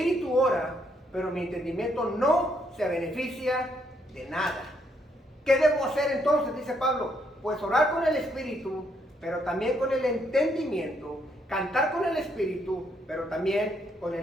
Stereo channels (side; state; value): both; normal; correlation 0.73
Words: ora, pero mi entendimiento no se beneficia de nada. ¿Qué debo hacer entonces? Dice Pablo, pues orar con el espíritu, pero también con el entendimiento, cantar con el espíritu, pero también con